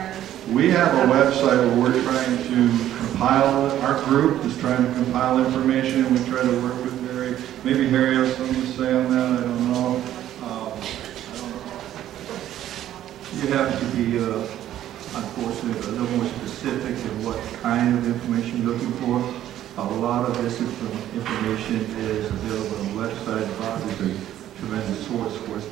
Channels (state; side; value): quieter; left; 12.2 dB